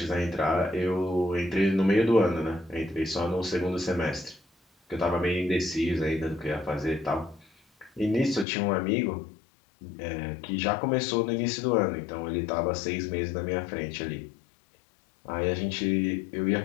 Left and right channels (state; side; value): drops out; right; at 8.5 s